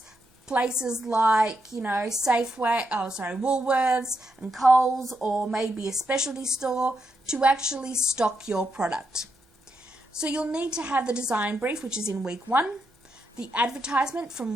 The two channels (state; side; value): normal; both; correlation 0.82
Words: places like, Woolworths and Coles, or maybe a specialty store, to actually stock your product. So you'll need to have the design brief, which is in week 1, the advertisement from